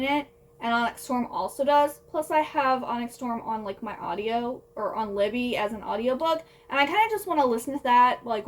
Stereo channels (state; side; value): identical; both; correlation 1.00